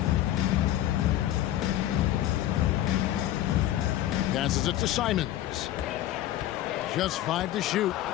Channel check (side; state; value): right; quieter; 13.3 dB